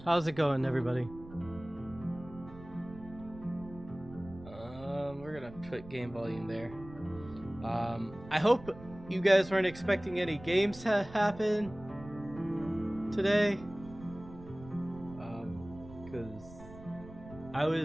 How's it going, everybody? We're gonna put game volume there. I hope you guys weren't expecting any games to happen today. Because I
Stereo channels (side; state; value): right; noise; rumble, 17 dB below the sound